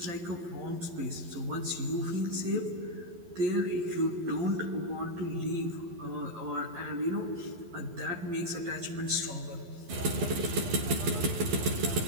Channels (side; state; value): left; late; 12 ms